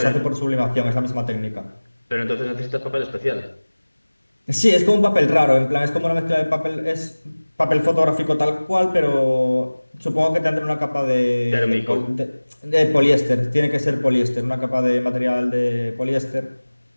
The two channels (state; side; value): inverted; both; correlation -1.00